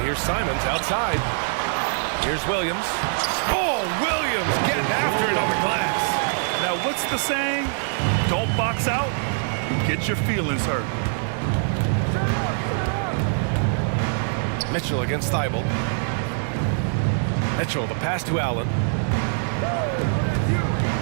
here's Simons outside. Here's Williams. Oh, Williams getting after it on the glass. Now, what's the saying? Don't box out, get your feelings hurt. Mitchell against Thibault. Mitchell, the pass to Allen.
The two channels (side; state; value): left; silent; 63 dB below the other